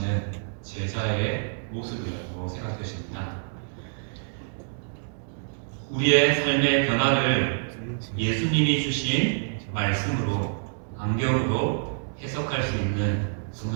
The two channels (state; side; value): silent; left; digital silence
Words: 제자의 모습이라고 생각되십니다. 우리의 삶의 변화를 예수님이 주신 말씀으로, 안경으로 해석할 수 있는